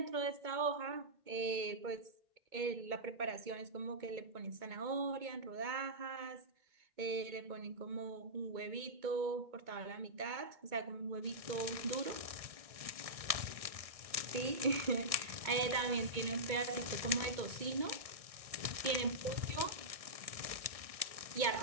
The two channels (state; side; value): late; left; 1.6 ms